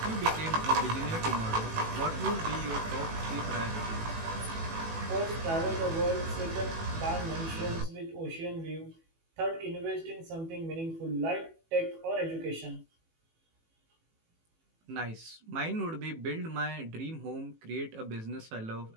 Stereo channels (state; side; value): late; left; 18 ms